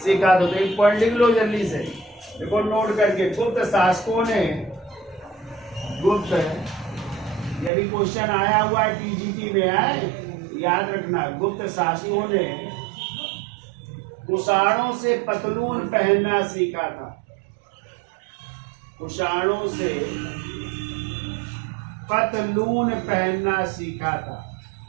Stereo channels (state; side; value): drops out; left; at 7.7 s